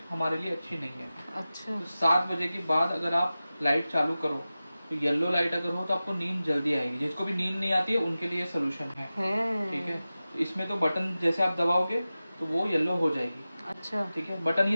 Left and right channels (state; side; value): inverted; both; correlation -0.95